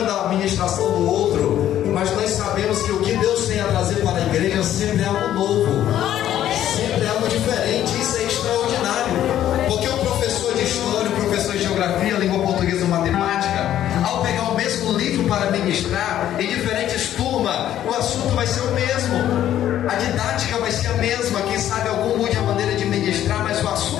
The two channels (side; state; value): right; quieter; 11.7 dB